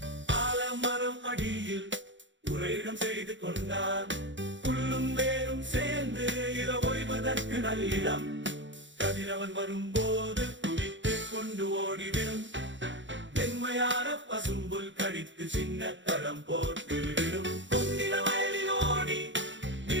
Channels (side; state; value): left; late; 0.54 ms